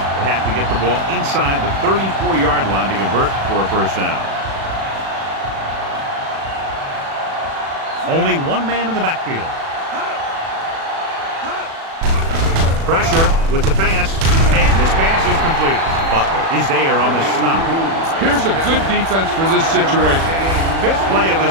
have to get the ball inside the 34-yard line to convert for a first down. Only one man in the backfield. Pressure with the pass, and this pass is completed. Butler is there on the stop. Here's a good defense for this situation. 5th play of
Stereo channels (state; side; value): late; left; 36 ms